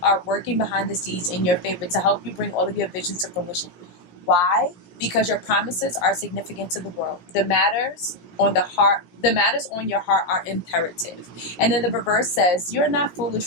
are working behind the scenes in your favor to help you bring all of your visions to fruition. Why? Because your promises are significant to the world. The matters on your heart are imperative. And then the reverse says, you're not foolish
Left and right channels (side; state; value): right; late; 17 ms